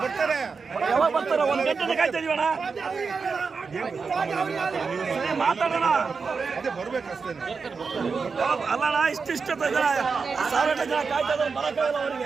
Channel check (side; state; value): left; quieter; 5.0 dB